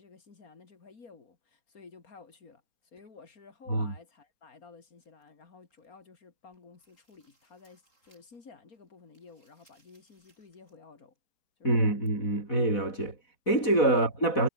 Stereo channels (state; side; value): late; right; 4.1 ms